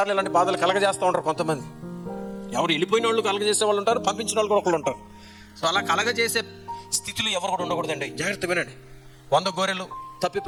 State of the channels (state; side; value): identical; both; correlation 1.00